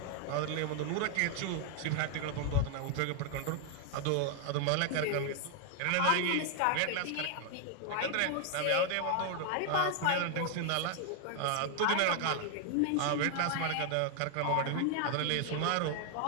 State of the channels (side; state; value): both; different; correlation 0.00